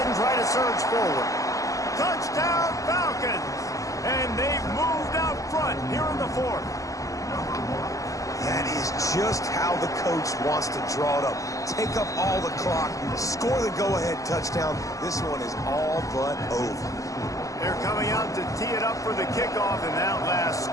and try to surge forward. Touchdown, Falcons! And they've moved out front here in the 4th. That is just how the coach wants to draw it up. Take up all the clock, score the go-ahead touchdown. This one is all but over. They're coming out to tee it up for the kickoff, and that last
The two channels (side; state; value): right; late; 0.16 ms